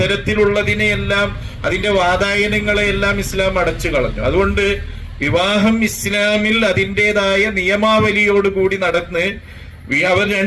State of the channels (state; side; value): identical; both; correlation 1.00